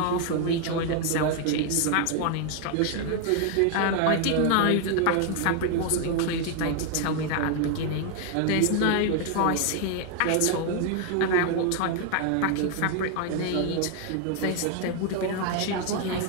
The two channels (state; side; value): different; both; correlation 0.00